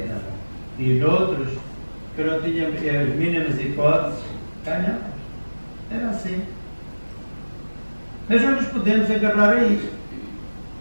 E noutros, que não tinham as mínimas hipóteses, ganhamos. Era assim. Mas não nos podemos agarrar a isto.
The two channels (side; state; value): both; inverted; correlation -1.00